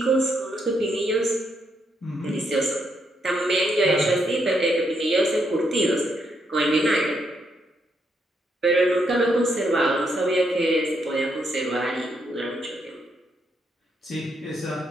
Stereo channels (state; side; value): normal; both; correlation 0.77